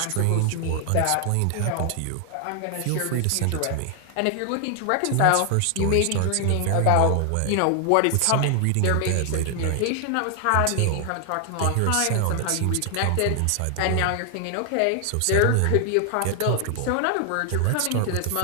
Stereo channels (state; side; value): different; both; correlation 0.00